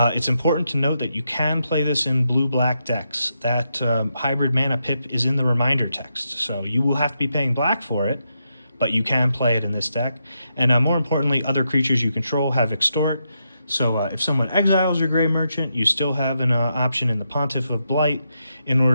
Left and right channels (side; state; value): both; inverted; correlation -0.83